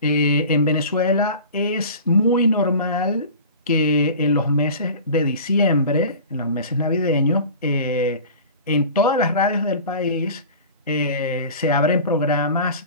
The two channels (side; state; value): both; inverted; correlation -0.39